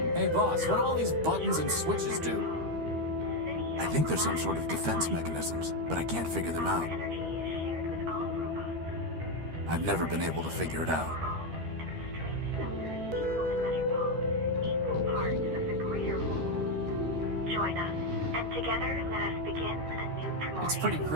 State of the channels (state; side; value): late; left; 13 ms